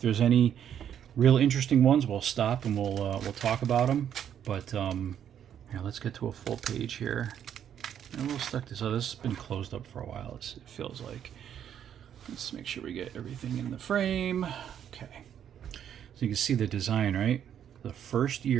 any real interesting ones, we'll stop and we'll talk about them. But yeah, let's get to a full page here. And we'll stuck this. So this has been closed up for a while. It feels like. Let's make sure we get everything in the frame. Okay. So you can see the design, right? The first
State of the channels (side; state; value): left; quieter; 9.4 dB